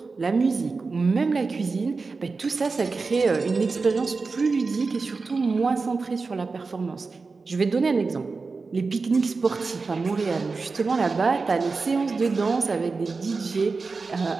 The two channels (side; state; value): left; quieter; 4.2 dB